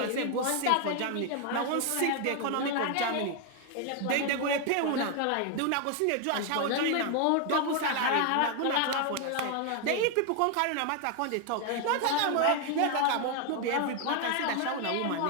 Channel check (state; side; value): different; both; correlation 0.01